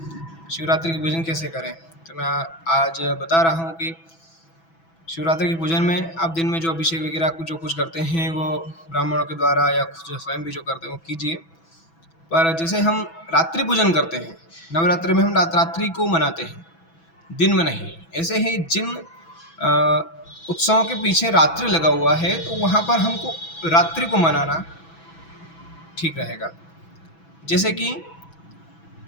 शिवरात्रि की पूजन कैसे करें। तो मैं आज बता रहा हूँ कि शिवरात्रि की पूजन में आप दिन में जो अभिषेक वगैरह जो कुछ करते हैं वो ब्राह्मणों के द्वारा या खुद स्वयं भी जो करते हैं वो कीजिए। पर जैसे हम रात्रि पूजन करते हैं, नवरात्रि में हम रात्रि को मनाते हैं, दिन में नहीं। ऐसे ही जिन उत्सवों के पीछे रात्रि लगा हुआ है तो वहाँ पर हमको रात्रि को मनाना ठीक रहेगा। जैसे कि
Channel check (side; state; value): right; late; 6.1 ms